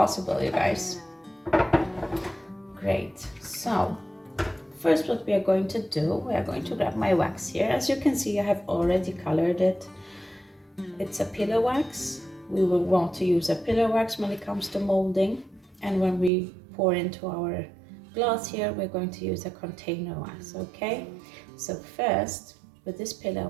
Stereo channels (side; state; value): left; drops out; at 16.3 s